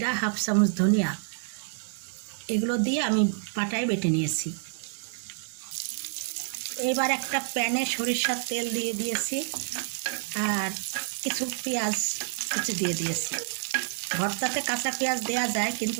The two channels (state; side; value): silent; left; digital silence